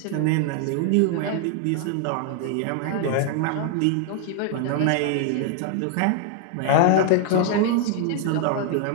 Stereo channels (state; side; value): different; both; correlation 0.00